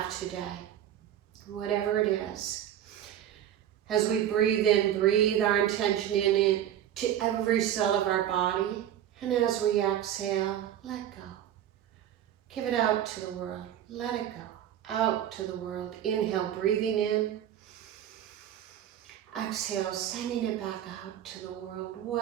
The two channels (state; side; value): quieter; left; 10.9 dB